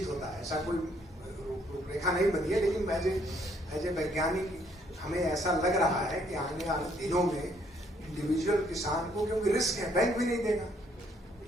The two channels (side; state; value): both; normal; correlation 0.67